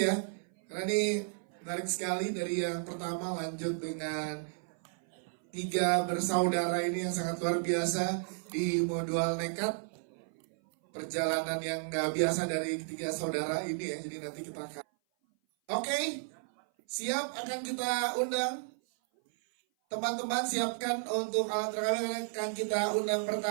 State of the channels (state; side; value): silent; left; 56 dB below the other